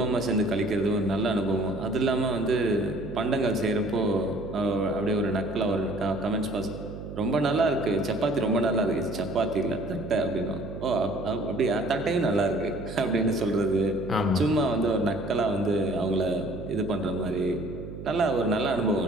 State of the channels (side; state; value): right; noise; hum, 10 dB below the sound